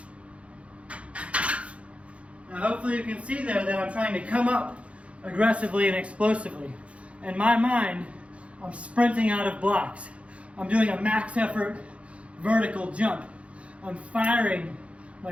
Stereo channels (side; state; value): left; late; 0.062 ms